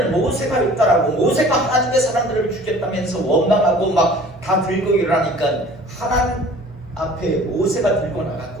모세가 했다라고, 모세가 하나님의 사람들을 죽였다면서 원망하고 막 다 들고 일어나니까 하나님 앞에 모세가 들고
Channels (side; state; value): both; normal; correlation 0.47